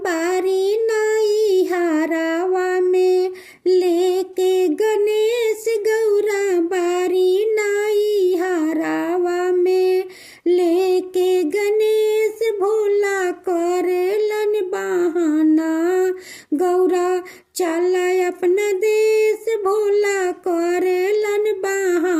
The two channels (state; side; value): identical; both; correlation 1.00